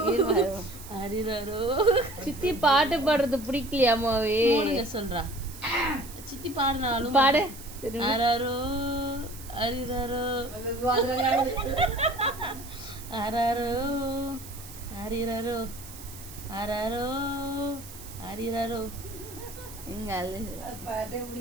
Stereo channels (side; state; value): right; noise; hiss, 15 dB below the sound